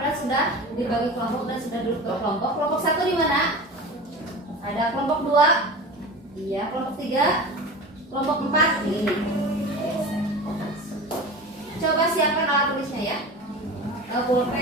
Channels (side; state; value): both; normal; correlation 0.32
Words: sudah dibagi kelompok dan sudah duduk ke kelompok. Kelompok 1 di mana? Ada kelompok 2. Iya, kelompok 3. Kelompok 4 ini. Coba siapkan alat tulisnya ya.